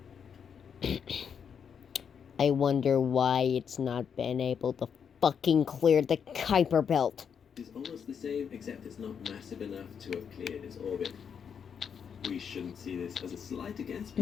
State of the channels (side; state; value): right; quieter; 7.2 dB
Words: I wonder why it's not been able to fucking clear the Kuiper Belt. It's almost the same, except it's not massive enough to have cleared its orbit. We shouldn't see this as a slight against